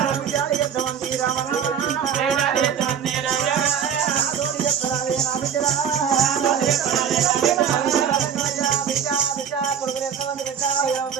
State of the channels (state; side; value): quieter; left; 7.8 dB